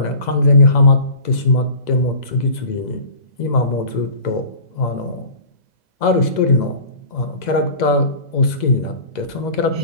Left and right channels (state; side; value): late; right; 2.0 ms